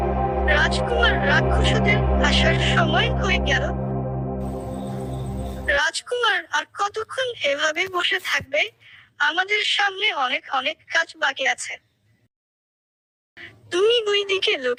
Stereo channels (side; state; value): both; identical; correlation 1.00